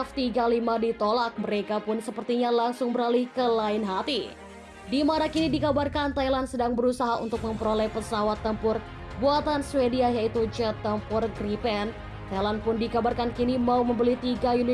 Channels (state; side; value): identical; both; correlation 1.00